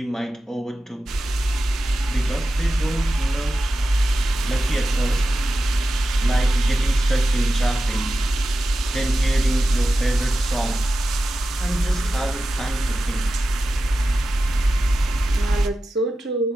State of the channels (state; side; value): normal; both; correlation 0.93